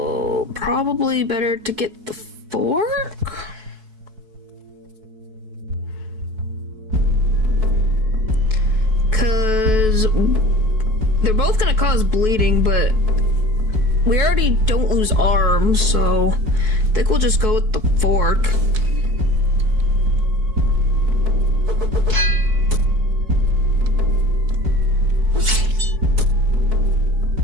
probably better to get the fork? Because they're both gonna cause bleeding, but we already don't lose arms, so I think we'll just go with the fork.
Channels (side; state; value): left; late; 4.6 ms